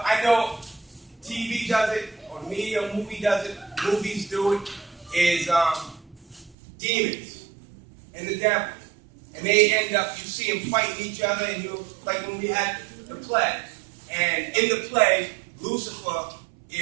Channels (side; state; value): left; drops out; at 6.6 s